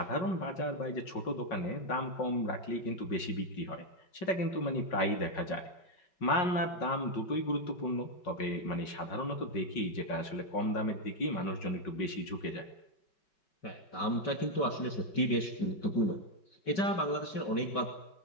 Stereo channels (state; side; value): late; right; 5.4 ms